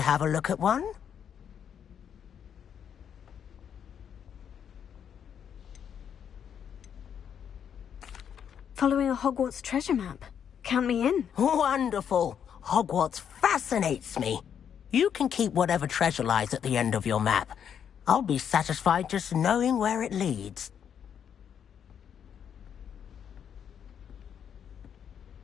have a look at one? Following a Hogwarts treasure map. Count me in. Wonderful. Hogwarts fascinates me. You can keep whatever treasure lies at the end of your map. I'll be satisfied just knowing where it leads.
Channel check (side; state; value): right; quieter; 8.3 dB